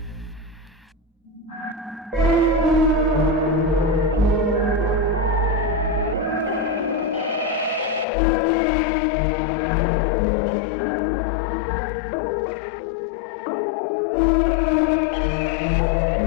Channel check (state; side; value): drops out; right; at 8.1 s